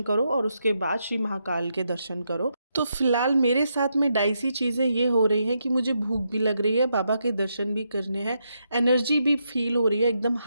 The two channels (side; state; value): both; inverted; correlation -0.81